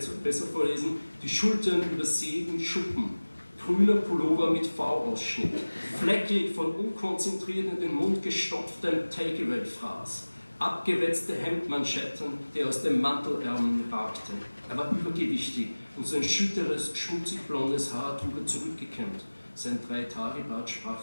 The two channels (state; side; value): inverted; both; correlation -1.00